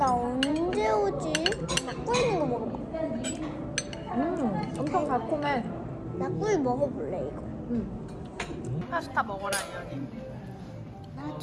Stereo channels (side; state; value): both; identical; correlation 1.00